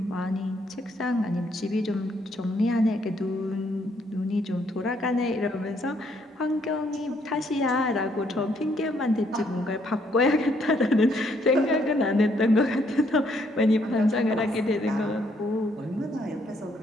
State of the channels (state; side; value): normal; both; correlation 0.70